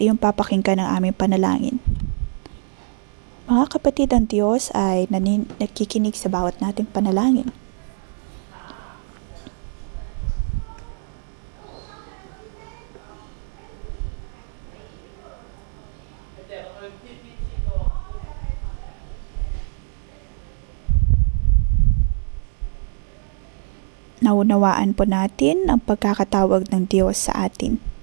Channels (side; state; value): left; silent; digital silence